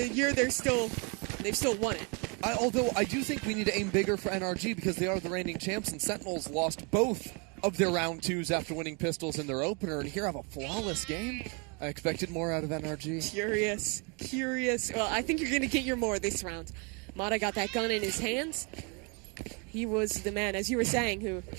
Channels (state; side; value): quieter; left; 32.7 dB